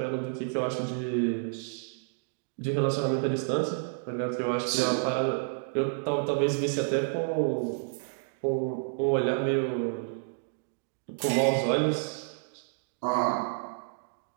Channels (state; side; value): silent; left; digital silence